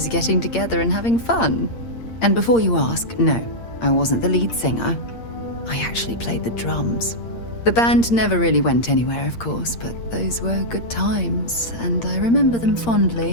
getting together and having fun. And before you ask, no, I wasn't the lead singer. I actually played the drums. The band never really went anywhere, of course, but those were good times, and I remember them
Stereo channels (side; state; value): right; late; 8.7 ms